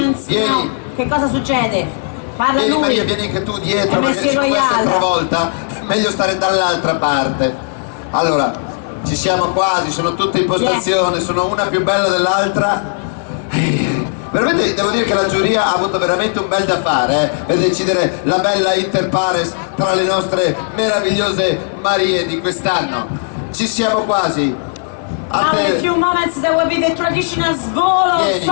now. Che cosa succede? Parla Vieni lui. Maria, vieni anche tu dietro, MSC perché questa è Royale. l'altra volta, meglio stare dall'altra parte. Allora, ci siamo quasi, sono tutte in postazione, sono una più bella dell'altra. Veramente devo dire che la giuria ha avuto veramente un bel da fare per decidere la bella inter pares tra le nostre meravigliose Marie di quest'anno. Ci siamo quasi. Now in a few moments there will be the traditional swallow of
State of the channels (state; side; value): silent; right; 65 dB below the other